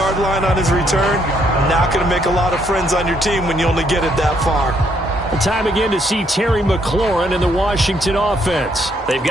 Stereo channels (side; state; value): both; normal; correlation 0.71